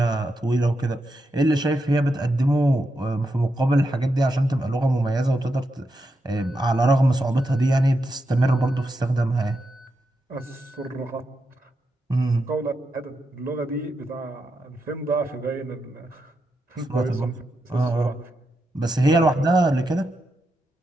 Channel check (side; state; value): both; normal; correlation 0.85